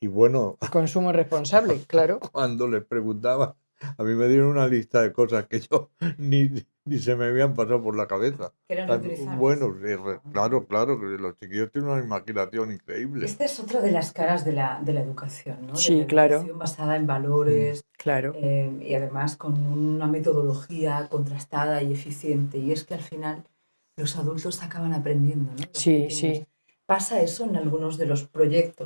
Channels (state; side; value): inverted; both; correlation -1.00